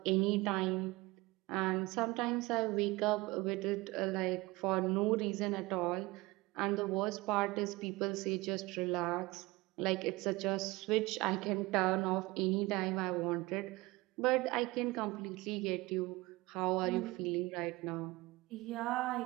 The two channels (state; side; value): quieter; left; 21.6 dB